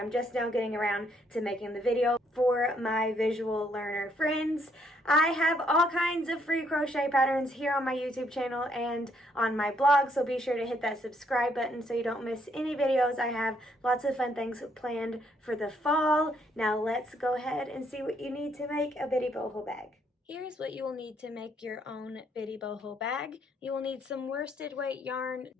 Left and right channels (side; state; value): both; normal; correlation 0.70